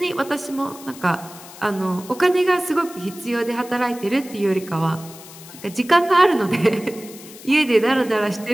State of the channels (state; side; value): noise; left; hiss, 17 dB below the sound